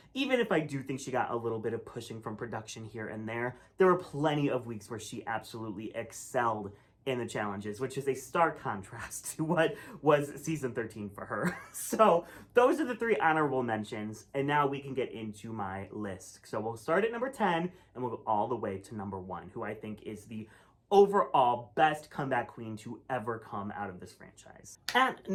Even if I do think she got a little bit of pushing from production here and there were plenty of weeks where she absolutely excelled in the challenges, which is a stark contrast to what was season 13 for her. So those are the 3 honorable mentions, and now we can get into my list. So we'll start at number 10, and we'll go all the way to number 1, who I think is the overall best comeback queen to ever come out of this franchise. At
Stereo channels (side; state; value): both; identical; correlation 1.00